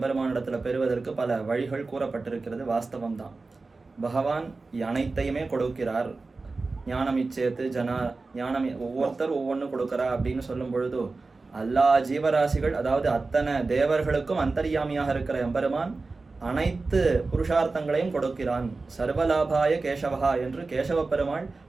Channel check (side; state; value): left; quieter; 3.7 dB